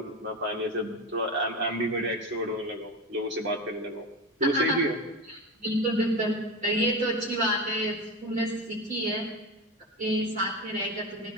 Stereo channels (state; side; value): normal; both; correlation 0.22